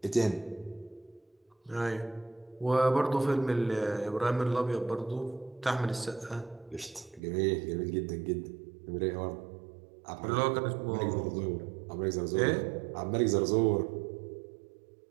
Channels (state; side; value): drops out; left; at 7.2 s